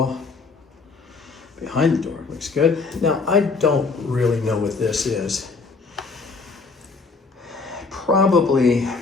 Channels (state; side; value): quieter; right; 4.3 dB